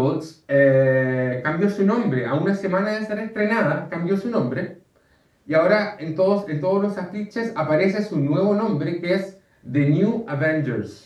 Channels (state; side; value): identical; both; correlation 1.00